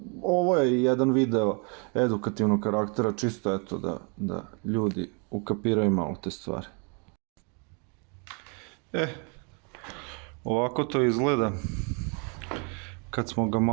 ovo je jedan video edukativnog karaktera, čisto eto da ljudi ukapiraju malo te stvari. Ovako to izgleda kad smo ga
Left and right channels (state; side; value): quieter; left; 35.3 dB